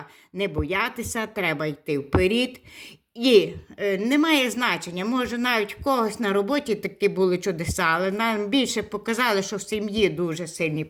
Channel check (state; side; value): identical; both; correlation 1.00